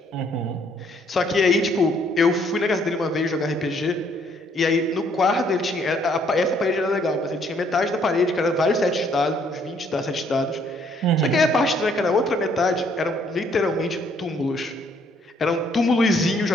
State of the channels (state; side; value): normal; both; correlation 0.66